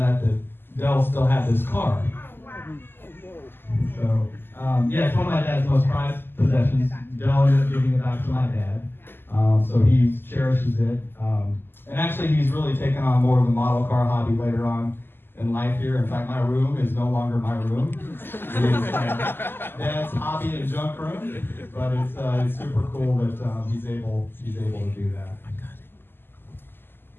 out that Del still had this car. So, it's one of my dad's most prized possessions. Del ended up giving it back to my dad, so he cherishes it. And actually, he's really taken on more of the model car hobby later on in life here. In fact, my room is no longer my room. It's Dad's hobby and junk room, but it's super cool that he's able to do that.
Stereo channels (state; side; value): late; right; 0.10 ms